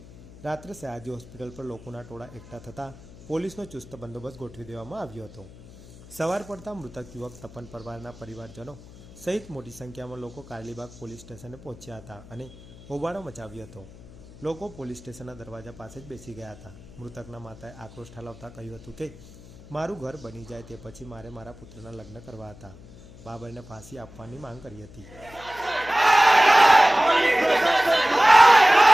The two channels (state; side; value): noise; left; hum, 19 dB below the sound